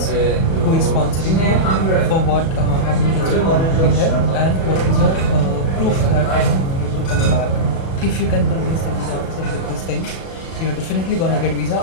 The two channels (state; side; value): late; right; 37 ms